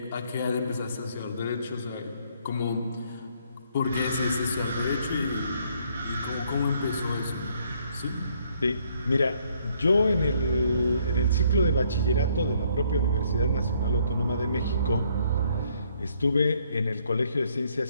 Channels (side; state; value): both; inverted; correlation -0.67